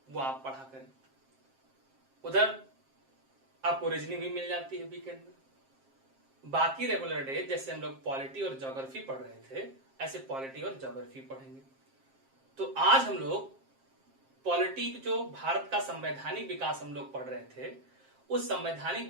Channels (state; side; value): late; left; 7.5 ms